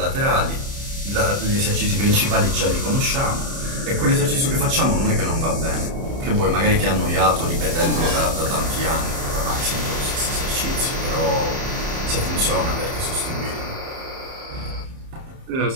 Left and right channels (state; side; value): late; left; 30 ms